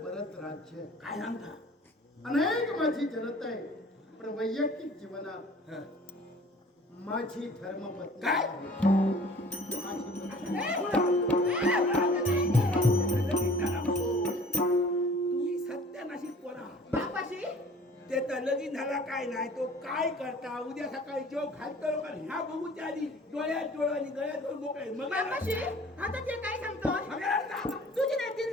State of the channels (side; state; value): both; normal; correlation 0.49